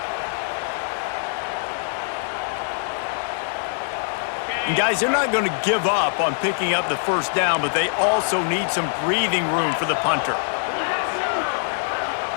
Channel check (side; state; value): right; silent; digital silence